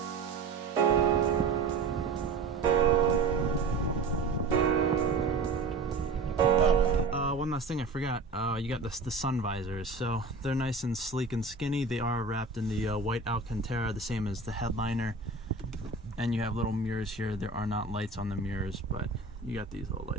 One last thing I forgot, you got the sun visors. So they're nice and sleek and skinny. They are wrapped in the white Alcantara, the same as the headliner. And you have little mirrors here. There are not lights on the mirrors, but you got these little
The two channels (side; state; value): left; quieter; 3.9 dB